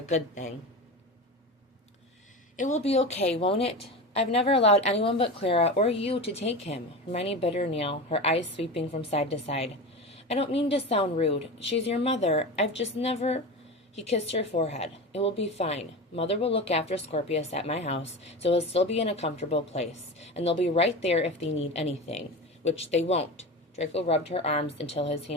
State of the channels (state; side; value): normal; both; correlation 0.26